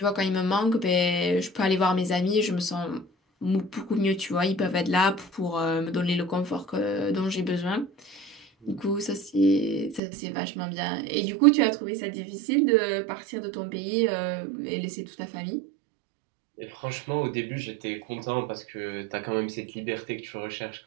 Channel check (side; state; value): left; drops out; at 10.0 s